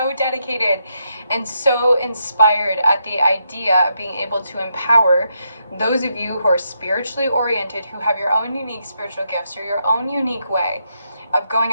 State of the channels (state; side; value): inverted; both; correlation -0.80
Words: dedicated and so inspired at the idea of being able to empower those of you who are spiritually oriented, who have your own unique spiritual gifts or your own unique way of